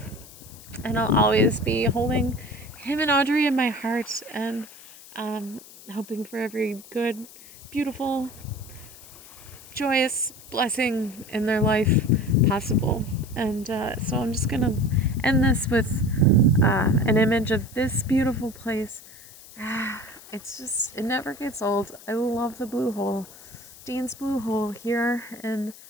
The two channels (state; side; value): noise; left; hiss, 19 dB below the sound